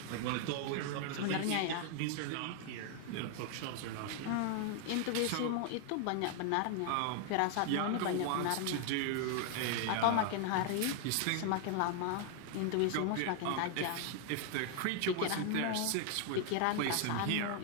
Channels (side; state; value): both; different; correlation 0.00